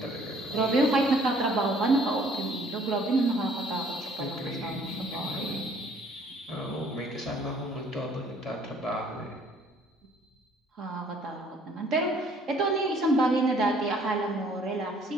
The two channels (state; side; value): normal; both; correlation 0.59